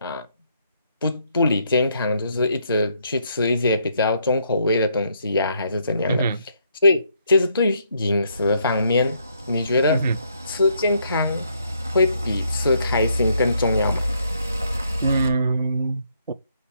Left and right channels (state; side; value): inverted; both; correlation -0.72